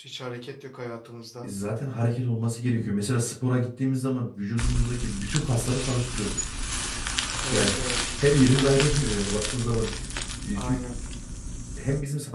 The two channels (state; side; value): identical; both; correlation 1.00